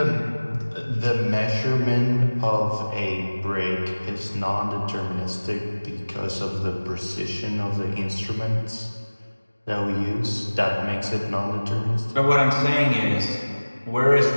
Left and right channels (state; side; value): inverted; both; correlation -1.00